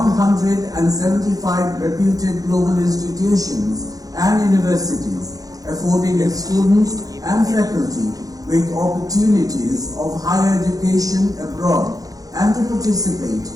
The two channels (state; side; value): late; left; 0.17 ms